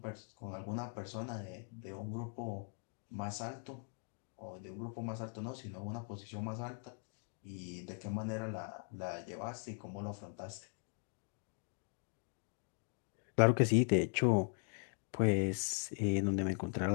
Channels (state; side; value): silent; right; 51 dB below the other